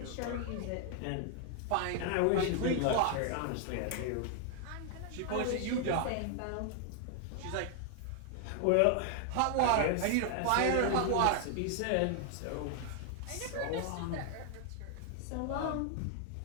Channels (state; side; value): different; both; correlation 0.00